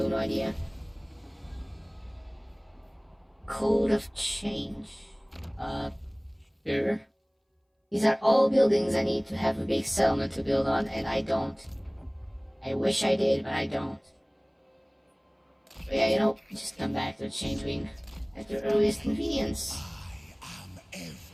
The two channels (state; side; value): identical; both; correlation 1.00